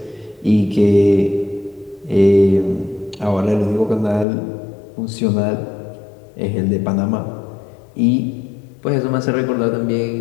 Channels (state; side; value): drops out; right; at 4.2 s